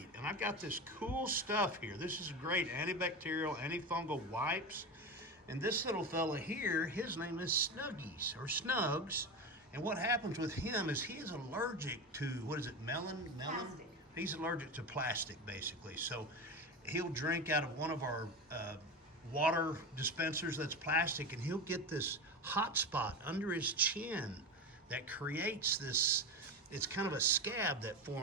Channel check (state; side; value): normal; both; correlation 0.22